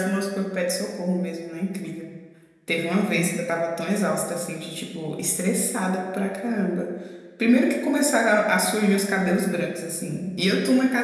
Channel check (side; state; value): both; identical; correlation 1.00